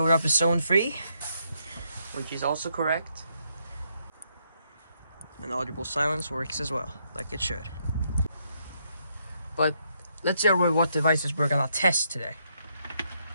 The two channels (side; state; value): both; inverted; correlation -0.76